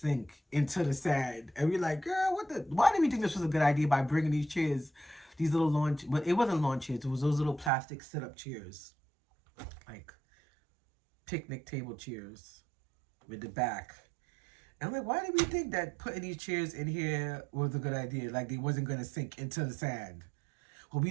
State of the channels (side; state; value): left; drops out; at 7.7 s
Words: into the sand. And we're like, girl, why did we think this was a good idea by bringing these chairs These little lawn, but it wasn't lawn chairs. It was those little plastic sit-up chairs, like picnic table chairs with the back. And I'm like, why did we think that putting these chairs in here was a good idea? Like they wasn't gonna sink into the sand. Well, we